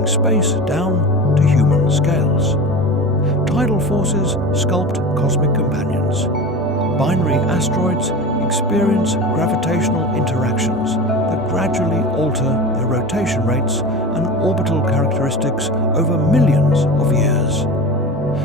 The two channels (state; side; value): normal; both; correlation 0.31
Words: space down to human scales. Tidal forces sculpt cosmic companions. Binary asteroids experience gravitational interactions that gradually alter their rotation rates and orbital characteristics over millions of years.